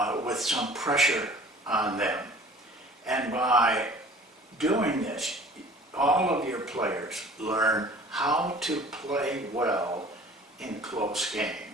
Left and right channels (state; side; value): normal; both; correlation 0.47